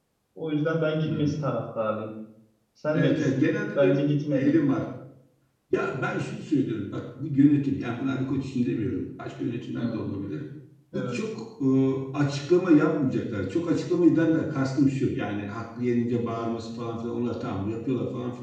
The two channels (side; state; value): both; identical; correlation 1.00